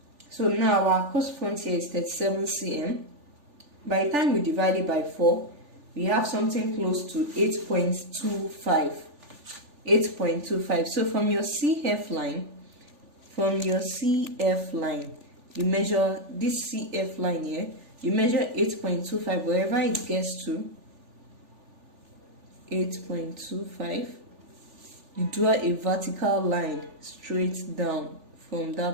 So now our across front here is 37 cm. By the time we divide it by 4, we have something close to 8.25. 8.25. So from your CF line, you measure this CF line here, you measure 8.25, wherever it gets to 8.25, you draw a vertical line straight down from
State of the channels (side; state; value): left; late; 3.4 ms